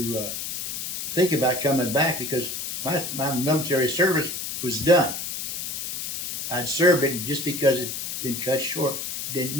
think about coming back because my military service was done. I'd served it, and just because it'd been cut short didn't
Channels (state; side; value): noise; left; hiss, 4 dB below the sound